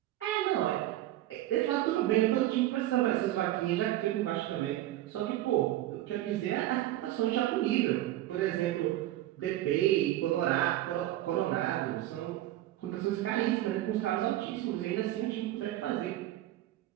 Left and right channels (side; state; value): left; quieter; 14.8 dB